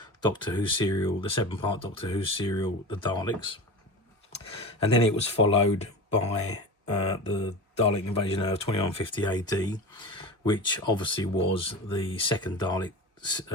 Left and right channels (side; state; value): both; normal; correlation 0.31